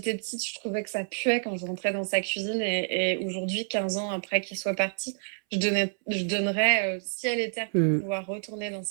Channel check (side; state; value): left; silent; 59 dB below the other